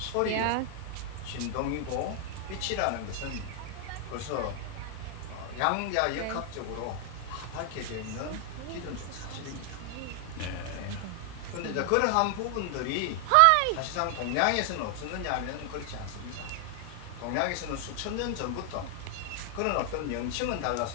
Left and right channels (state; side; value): different; both; correlation 0.00